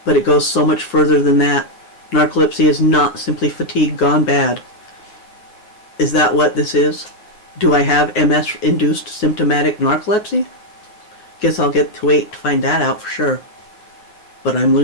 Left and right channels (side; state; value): right; late; 9.3 ms